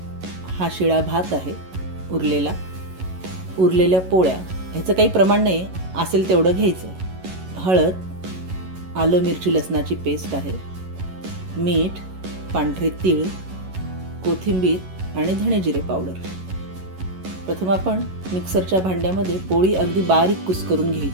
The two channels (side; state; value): left; late; 11 ms